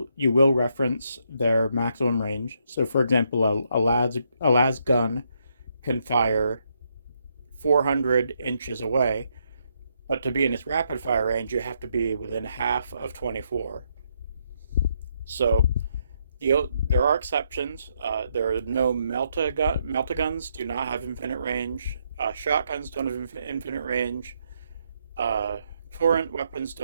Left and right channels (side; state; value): both; inverted; correlation -0.76